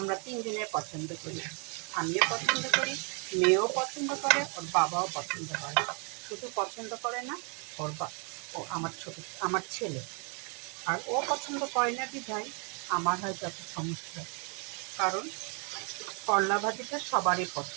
তিনজনে পছন্দ করি। আমিও পছন্দ করি, মেয়েও পছন্দ করে, ওর বাবাও পছন্দ করে। শুধু পছন্দ করে না ওর ও আমার ছেলে। আর ও পছন্দ করে না বিধায় আমার হয় যত সমস্যা। কারণ করলা ভাজিটা সবারই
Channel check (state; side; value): quieter; left; 36.8 dB